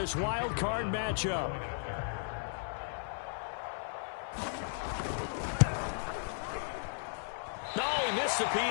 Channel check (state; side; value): silent; right; 54 dB below the other